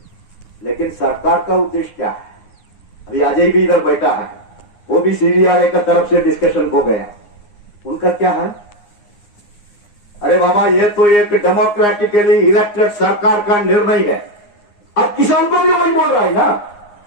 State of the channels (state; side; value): late; right; 9.7 ms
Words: लेकिन सरकार का उद्देश्य क्या है? अभी अजय भी इधर बैठा है, वो भी सीडीआरए का तरफ से डिस्कशन को गया। उनका क्या है? अरे बाबा ये तो एक डेमोक्रेटिकली इलेक्टेड सरकार का निर्णय है। अब किसान को भी वही बोल रहा है ना।